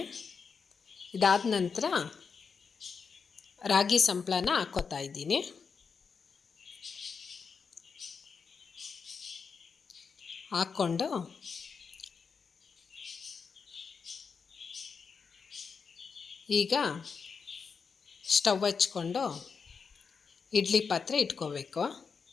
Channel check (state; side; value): quieter; right; 5.6 dB